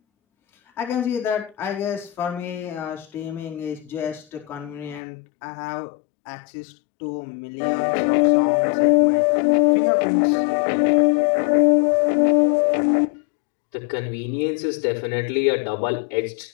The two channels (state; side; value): drops out; right; at 5.0 s